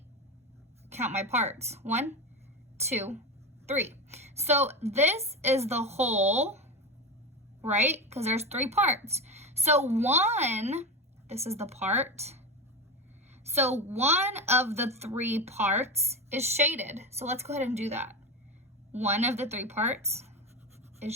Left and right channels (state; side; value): normal; both; correlation 0.20